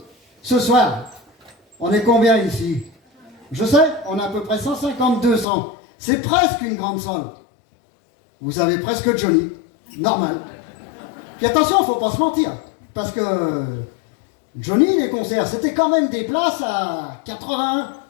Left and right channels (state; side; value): drops out; right; at 5.5 s